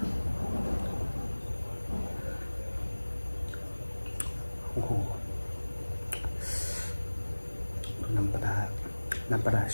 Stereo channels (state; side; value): inverted; both; correlation -1.00